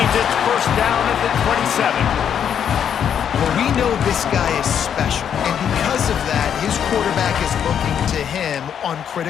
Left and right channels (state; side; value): quieter; right; 8.5 dB